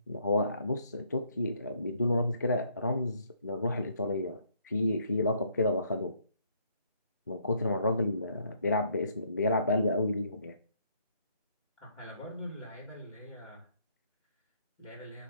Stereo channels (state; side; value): inverted; both; correlation -0.67